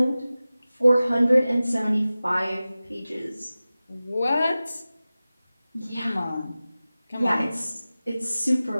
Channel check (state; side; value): inverted; both; correlation -0.96